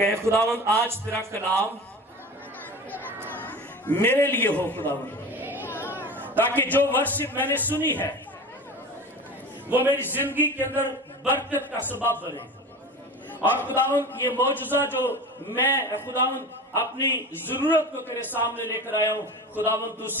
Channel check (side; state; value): both; normal; correlation 0.33